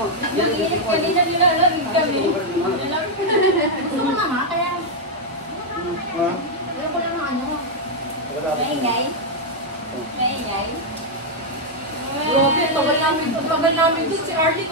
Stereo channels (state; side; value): normal; both; correlation -0.01